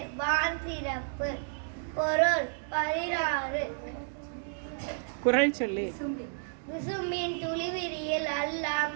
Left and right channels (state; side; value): silent; left; digital silence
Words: வான் சிறப்பு. பொருள் 16. குறள் சொல்லி. விசும்பின் துளிவிரியில் அல்ல